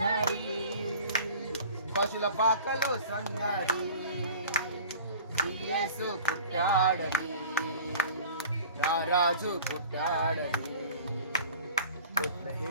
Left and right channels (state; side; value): inverted; both; correlation -0.43